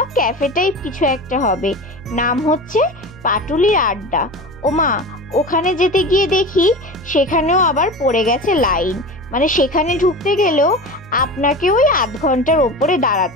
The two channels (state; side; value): noise; left; hum, 27 dB below the sound